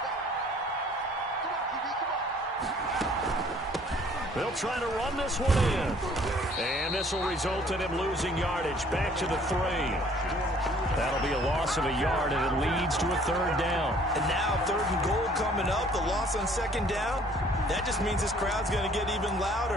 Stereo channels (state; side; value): normal; both; correlation 0.57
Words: They'll try to run this one in. And this will result in him losing yardage back to the 3. That'll be a loss of a yard, and it leads to a 3rd down. And now 3rd and goal coming up, the loss on 2nd down. That just means this crowd's going to get even